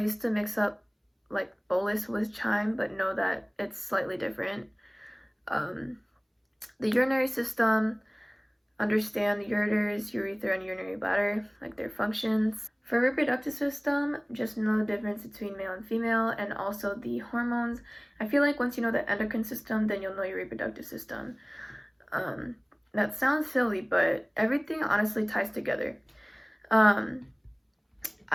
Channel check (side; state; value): both; identical; correlation 1.00